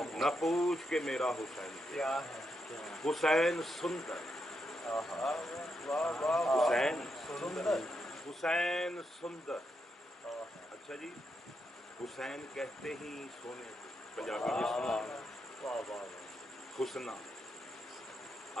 نہ پوچھ کے میرا حسین کیا ہے, حسین سندر, حسین حسین سندر. اچھا جی, حسین کہتے ہی سونے کو, پنجابی میں سنا حسنا,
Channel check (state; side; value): normal; both; correlation 0.82